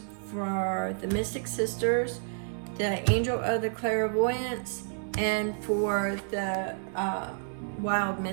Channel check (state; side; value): silent; left; 58 dB below the other